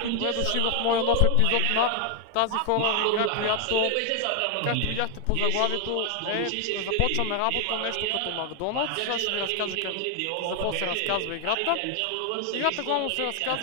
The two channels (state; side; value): different; both; correlation 0.00